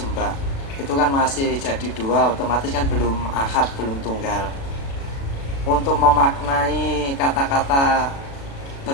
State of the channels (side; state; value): right; late; 36 ms